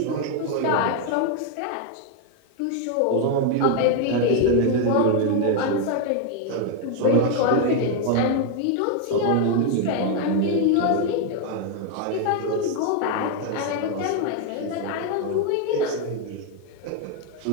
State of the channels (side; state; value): both; different; correlation 0.01